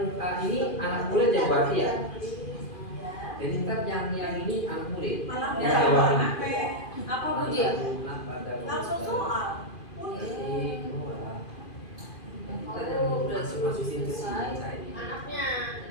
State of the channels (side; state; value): right; late; 2.5 ms